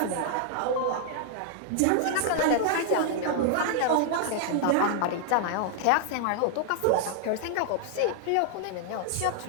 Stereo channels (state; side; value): different; both; correlation -0.01